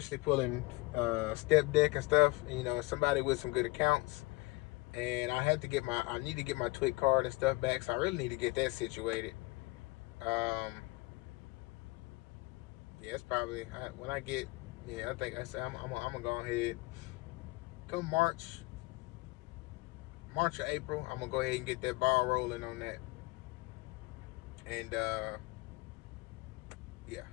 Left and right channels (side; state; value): right; quieter; 22.6 dB